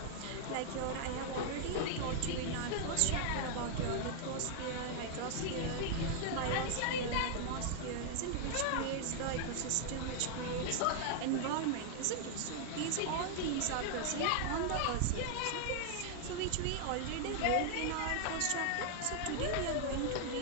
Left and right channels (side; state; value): both; different; correlation 0.00